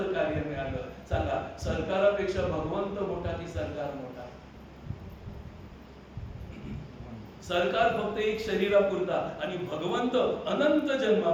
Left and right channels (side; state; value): both; identical; correlation 1.00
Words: कार्य मिळालं. सांगा, सरकारापेक्षा भगवंत मोठा की सरकार मोठा? सरकार फक्त एक शरीरापुरता आणि भगवंत अनंत